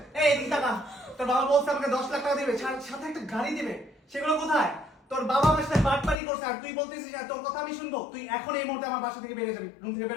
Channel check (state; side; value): drops out; right; at 6.2 s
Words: এই এদিকে টাকা, তোর বাবা বলছে আমাকে 10 লাখ টাকা দিবে, সাথে একটা গাড়ি দিবে, সেগুলো কোথায়? তোর বাবা আমার সাথে বাটপারি করছে আর তুই বলতেছিস তোর কথা আমি শুনবো? তুই এখন এই মুহূর্তে আমার বাসা থেকে বেরিয়ে যাবি, রুম থেকে